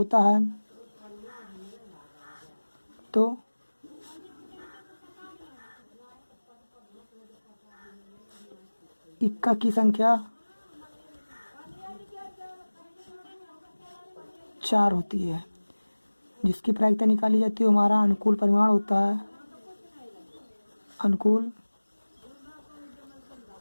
है। तो इक्का की संख्या 4 होती है, जिसकी प्रायिकता निकाली जाती है हमारा अनुकूल परिमाण होता है। अनुकूल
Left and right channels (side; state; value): both; inverted; correlation -1.00